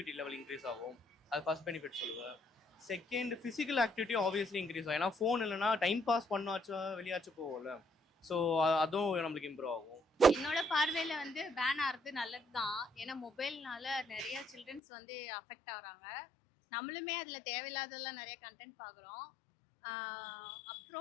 லெவல் இன்க்ரீஸ் ஆகும். அது ஃபஸ்ட் பெனிஃபிட் சொல்லுவேன். Second physical activity obviously increase ஆகும். ஏன்னா ஃபோன் இல்லைனா டைம் பாஸ் பண்ணாச்சும் வெளியாச்சும் போகும்ல, ஸோ அதுவும் நம்மளுக்கு இம்ப்ரூவ் ஆகும். என்னோட பார்வையில வந்து பேன் ஆகிறது நல்லது தான். ஏன்னா மொபைல்னால நிறைய சில்ட்ரன்ஸ் வந்து அஃபெக்ட் ஆகுறாங்க. நம்மளுமே அதில் தேவையில்லாதெல்லாம் நிறைய கண்டென்ட் பார்க்குறோம்.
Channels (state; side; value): drops out; right; at 14.8 s